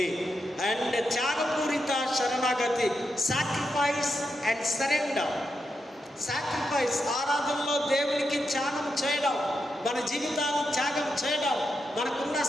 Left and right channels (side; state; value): both; normal; correlation 0.85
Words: అండ్ త్యాగపూరిత శరణాగతి, సాక్రిఫైస్ అండ్ సరెండర్. సాక్రిఫైస్ ఆరాధనలో దేవునికి త్యాగం చేయడం, మన జీవితాలను త్యాగం చేయడం, మనకున్న